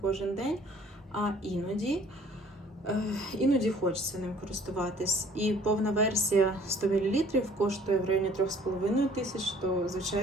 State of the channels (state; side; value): normal; both; correlation 0.56